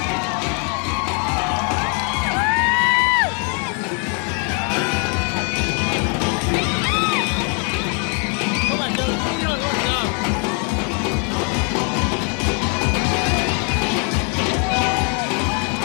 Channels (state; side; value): quieter; right; 39.1 dB